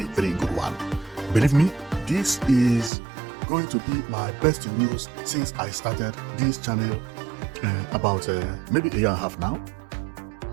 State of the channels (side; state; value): left; drops out; at 2.9 s